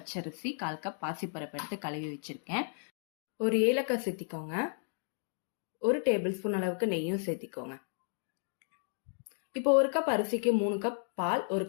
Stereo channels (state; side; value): silent; right; digital silence